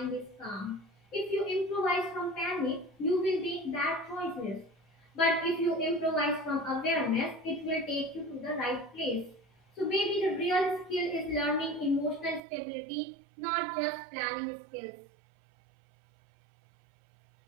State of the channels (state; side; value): drops out; left; at 12.4 s